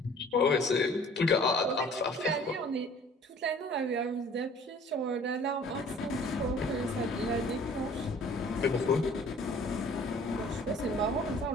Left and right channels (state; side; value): normal; both; correlation 0.52